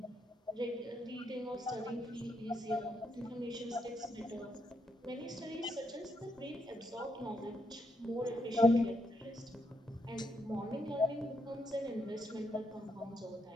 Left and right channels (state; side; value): normal; both; correlation 0.78